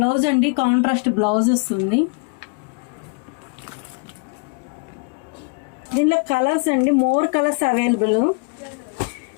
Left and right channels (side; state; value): right; quieter; 33.8 dB